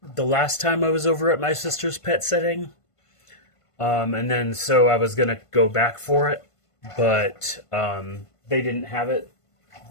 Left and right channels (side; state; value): right; late; 1.5 ms